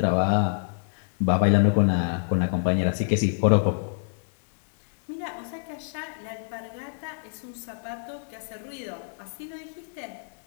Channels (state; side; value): silent; right; digital silence